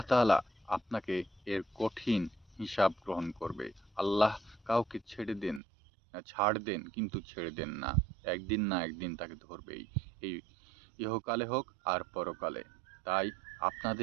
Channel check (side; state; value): left; drops out; at 5.6 s